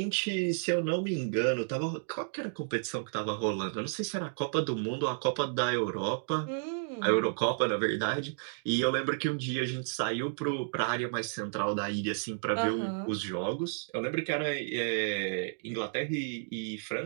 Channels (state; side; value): silent; left; digital silence